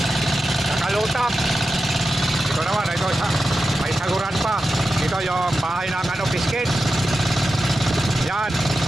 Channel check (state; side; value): normal; both; correlation 0.91